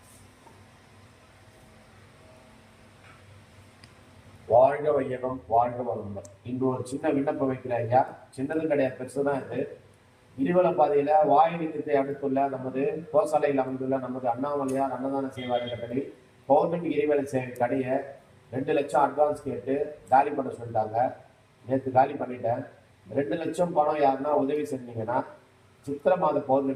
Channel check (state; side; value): identical; both; correlation 1.00